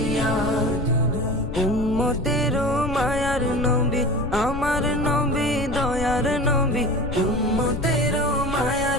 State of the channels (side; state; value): left; noise; rumble, 7 dB below the sound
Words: উম্মতের মায়ার নবী আমার নবী দয়ার নবী, উম্মতের